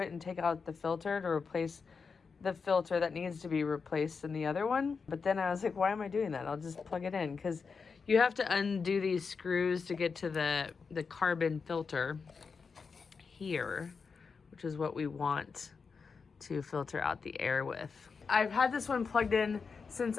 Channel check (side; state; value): right; quieter; 5.2 dB